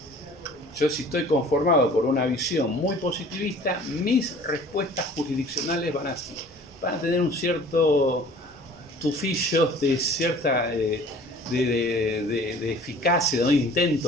Yo, si estoy conformado por una visión muy positivista, mis respuestas jurisdiccionales van a tener un cierto tufillo de cierta de eficacia, de un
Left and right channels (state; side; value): normal; both; correlation 0.48